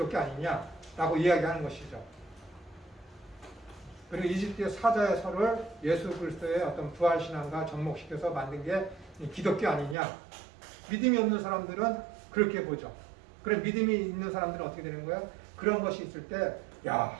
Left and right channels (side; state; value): left; drops out; at 10.0 s